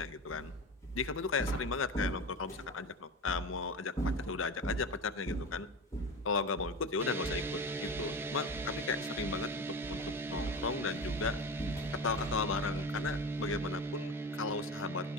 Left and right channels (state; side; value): normal; both; correlation 0.28